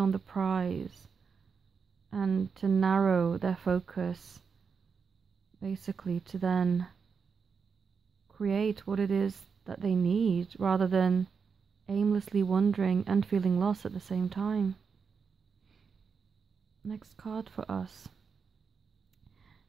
the prize and to narrow their focus, basically to then create what it is that they need, rather than aimlessly wandering and feeling lost at the same time. Next card for us.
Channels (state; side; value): quieter; left; 5.8 dB